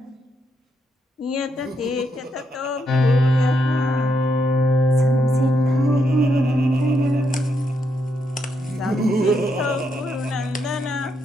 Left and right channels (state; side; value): normal; both; correlation 0.79